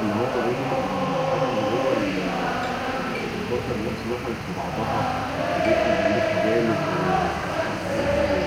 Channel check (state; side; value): identical; both; correlation 1.00